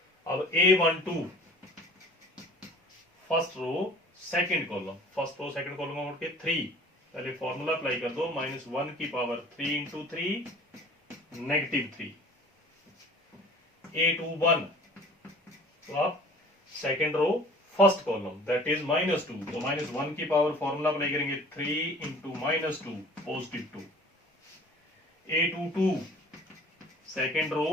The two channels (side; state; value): both; normal; correlation 0.47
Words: अब A12 first row second column, first row second column में उठ के 3, पहले फॉर्मूला अप्लाई कर दो, -1 की पावर 3 इंटू 3 -3। A21 तो आप second row first column that is -2 तो -1 की पावर फॉर्मूला अप्लाई करेंगे 3 into -2 +2। A22 second row